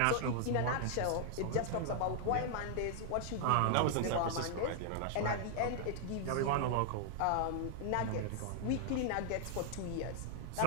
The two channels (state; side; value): different; both; correlation 0.00